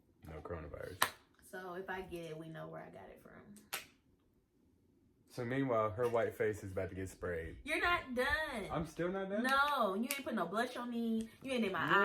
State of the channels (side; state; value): both; identical; correlation 1.00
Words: no coronavirus. So if I get it, we know where I got it from. So meanwhile, her white face is about to get sprayed. You're not done. I'm still not done? No, you ain't put no blush on me. You ain't did